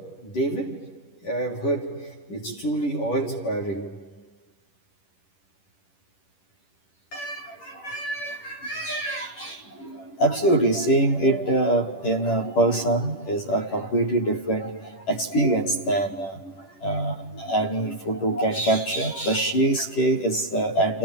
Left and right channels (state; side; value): late; right; 10 ms